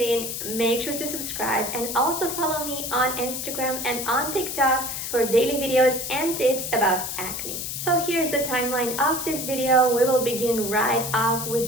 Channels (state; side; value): noise; left; hiss, 5 dB below the sound